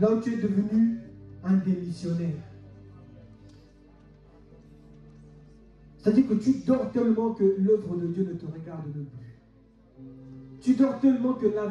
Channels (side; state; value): both; identical; correlation 1.00